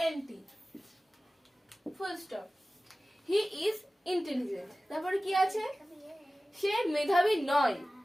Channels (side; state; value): both; normal; correlation 0.96